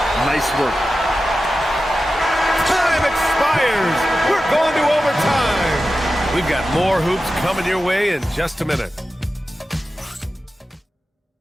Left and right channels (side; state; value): both; normal; correlation 0.93